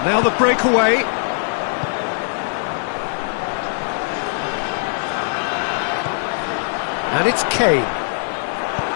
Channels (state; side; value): silent; right; digital silence